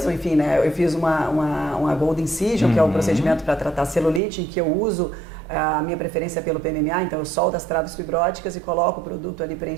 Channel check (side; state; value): left; drops out; at 4.2 s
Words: enfim, né? Eu fiz uma Gold Incision, que é o procedimento para tratar celulite, em que eu uso a minha preferência pelo PMMA, então eu solto as traves fibróticas e coloco o produto ali